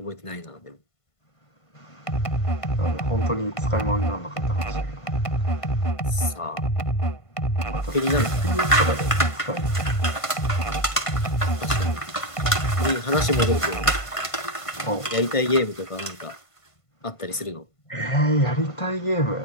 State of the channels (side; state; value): right; late; 1.5 ms